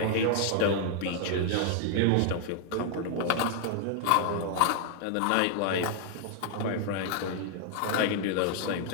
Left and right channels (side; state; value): both; different; correlation 0.00